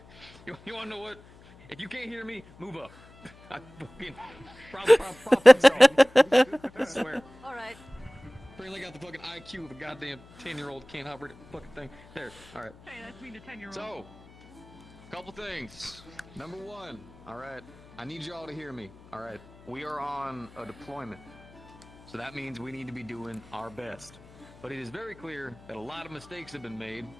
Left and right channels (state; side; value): noise; left; hum, 23 dB below the sound